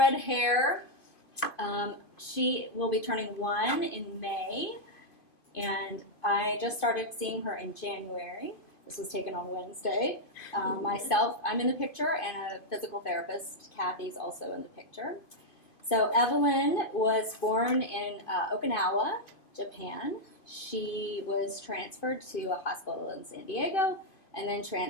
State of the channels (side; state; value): right; late; 2.5 ms